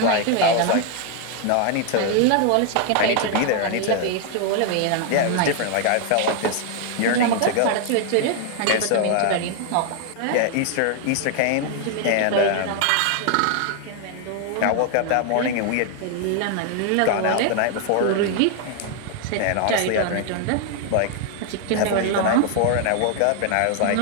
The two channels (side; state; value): both; different; correlation 0.00